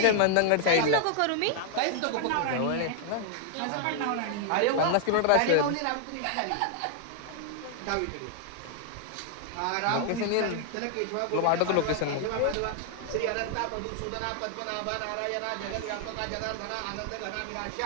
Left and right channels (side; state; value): both; different; correlation 0.00